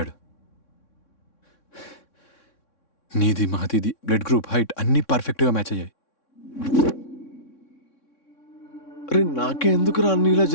నీది మహతిది బ్లడ్ గ్రూప్, హైట్ అన్నీ పర్ఫెక్ట్గా మ్యాచ్ అయ్యాయి. అరే నాకే ఎందుకురా అన్ని ఇలా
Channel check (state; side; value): late; right; 3.6 ms